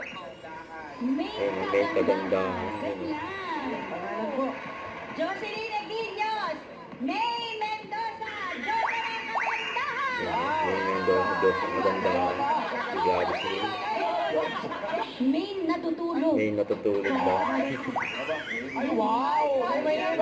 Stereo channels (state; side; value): identical; both; correlation 1.00